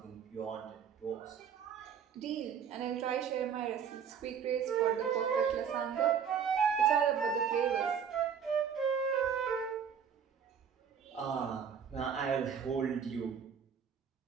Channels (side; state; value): left; quieter; 7.3 dB